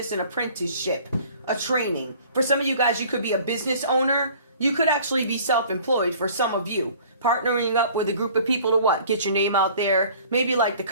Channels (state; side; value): inverted; both; correlation -0.50